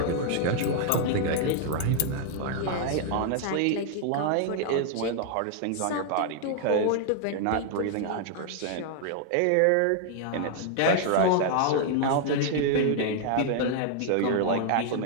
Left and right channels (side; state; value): both; different; correlation 0.00